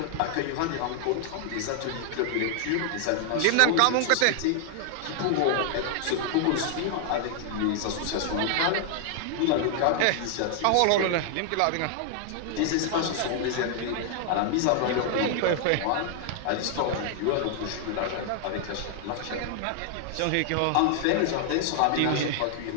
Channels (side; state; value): both; different; correlation 0.00